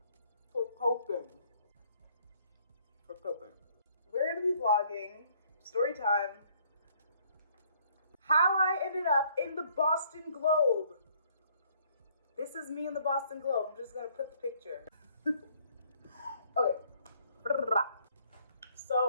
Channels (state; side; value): inverted; both; correlation -0.63